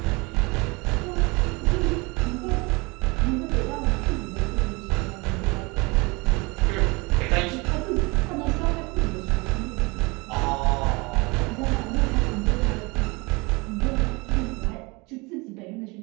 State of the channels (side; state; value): left; quieter; 26.4 dB